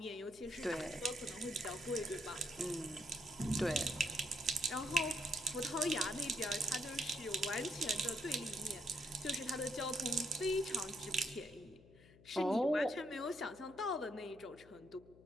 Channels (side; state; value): left; noise; hum, 23 dB below the sound